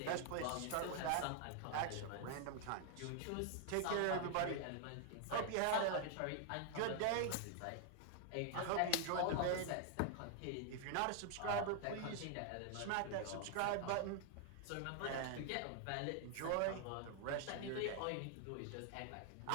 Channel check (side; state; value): both; different; correlation 0.00